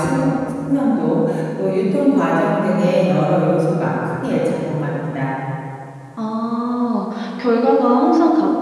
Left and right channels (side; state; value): both; identical; correlation 1.00